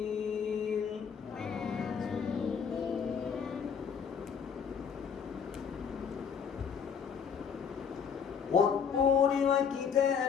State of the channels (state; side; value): quieter; right; 6.9 dB